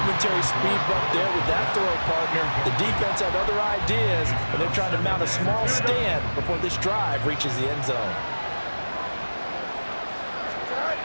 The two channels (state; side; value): inverted; both; correlation -1.00